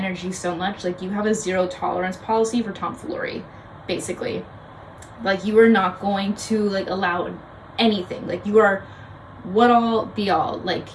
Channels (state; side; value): identical; both; correlation 1.00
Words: so much. Like, you have a zero tolerance policy for tomfoolery, basically. Like, you are not going to like allow anything. Like, you are what all be all. Like,